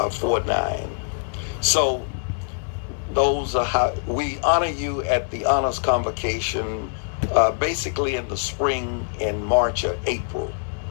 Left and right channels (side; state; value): right; silent; digital silence